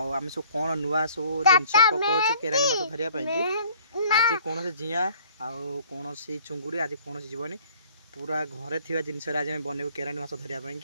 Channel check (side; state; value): both; inverted; correlation -0.54